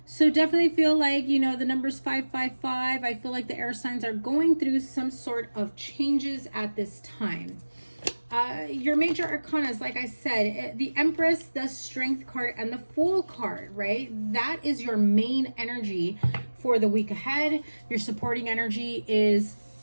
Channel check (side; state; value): both; inverted; correlation -1.00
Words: So definitely feel like, the numbers 555. I feel like the air signs are going through some sort of changes at this time. Your major arcanas, like I said, the Empress, the Strength card, and the Fool card, right? That is your main energy for the week ahead. Your supporting energy is